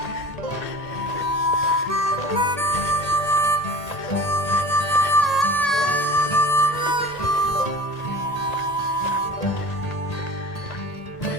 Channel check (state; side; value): late; right; 1.8 ms